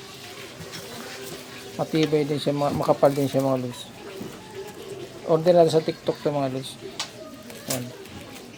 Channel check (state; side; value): identical; both; correlation 1.00